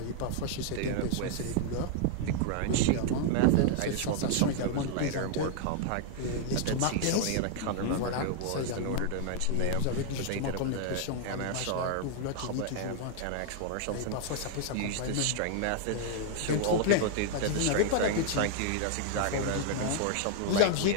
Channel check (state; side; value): different; both; correlation -0.01